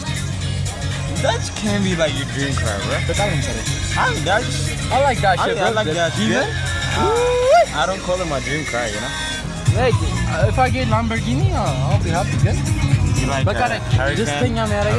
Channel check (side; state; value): both; identical; correlation 1.00